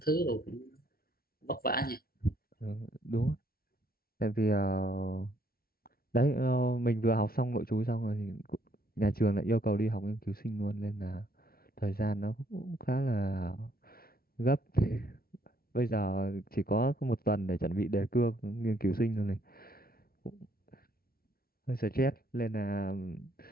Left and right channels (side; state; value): right; late; 0.44 ms